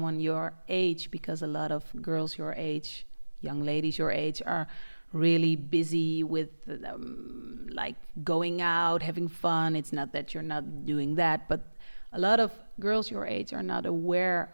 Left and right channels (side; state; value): both; inverted; correlation -1.00